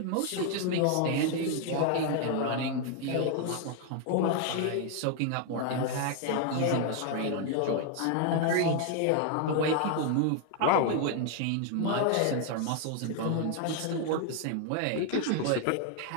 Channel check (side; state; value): both; different; correlation 0.00